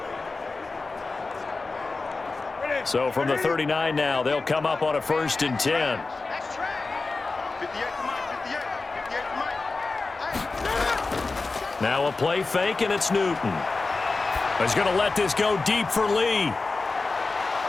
So from the 39 now, they'll come up on a 1st and 10. Now a play fake, and it's Newton. He's going to let this go deep for Lee.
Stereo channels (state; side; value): quieter; right; 3.8 dB